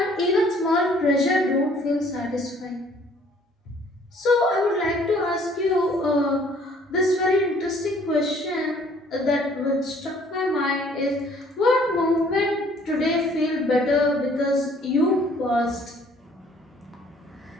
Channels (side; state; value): both; normal; correlation 0.58